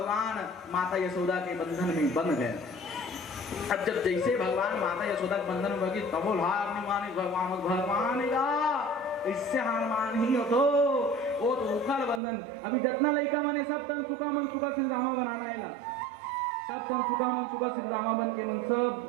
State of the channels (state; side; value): drops out; left; at 12.2 s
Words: माता यशोदा के बंधन में बंध गए। अब जब जैसे भगवान माता यशोदा के बंधन में गए तब हार नहीं मानी भगवान का, इससे हार मान ही हो तो वो तो उखल बंधन। अभी जितना लड़का माने सब तन सुखा मन सुखा सिंधामा बनाना है, सब तन सुखा मन सुखा सिंधामा बन के मन सब